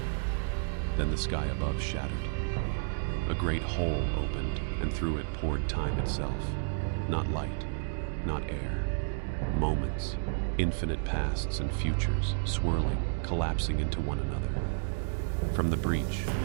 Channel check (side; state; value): left; silent; digital silence